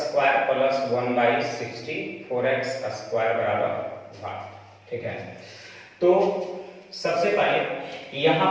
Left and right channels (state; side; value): identical; both; correlation 1.00